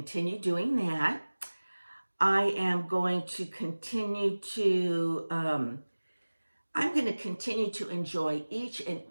doing that. I am going to continue to, enjoy each and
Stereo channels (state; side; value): inverted; both; correlation -1.00